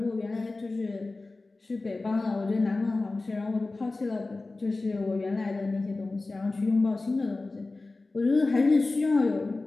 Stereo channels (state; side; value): quieter; right; 3.3 dB